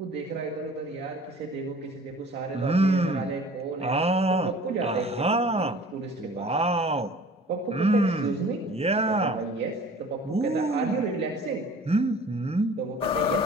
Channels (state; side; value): normal; both; correlation 0.47